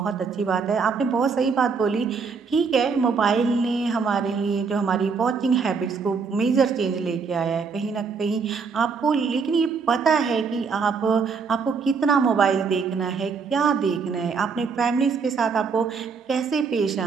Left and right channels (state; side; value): quieter; left; 5.3 dB